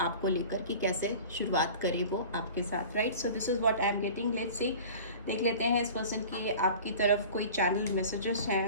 आपको लेकर कि कैसे शुरुआत करे वो आपके साथ। Right, so this is what I am getting. Let's see, देख लेते हैं इस पर्सन की आपकी तरफ कोई चैनल मैसेजेस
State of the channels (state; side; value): inverted; both; correlation -0.40